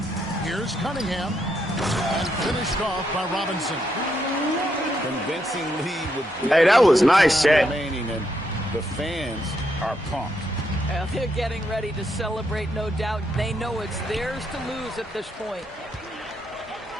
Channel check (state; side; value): normal; both; correlation 0.78